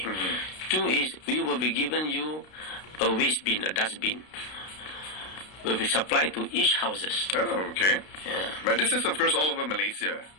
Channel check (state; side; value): late; right; 32 ms